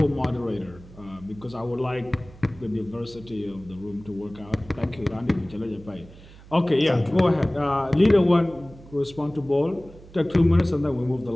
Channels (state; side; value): noise; right; hum, 21 dB below the sound